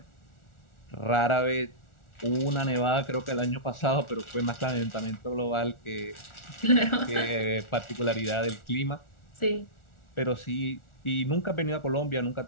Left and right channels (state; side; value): late; right; 1.4 ms